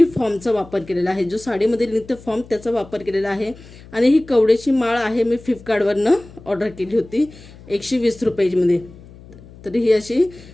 फॉर्मचा वापर केलेला आहे, जो साडीमध्ये निघतं फॉर्म त्याचा वापर केलेला आहे. आणि ही कवड्याची माळ आहे, मी फ्लिपकार्टवरनं ऑर्डर केली होती 120 रुपयामध्ये. तर ही अशी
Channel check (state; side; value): noise; left; hum, 20 dB below the sound